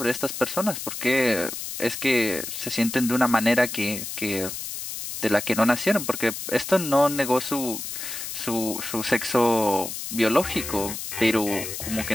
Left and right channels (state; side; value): noise; left; hiss, 7 dB below the sound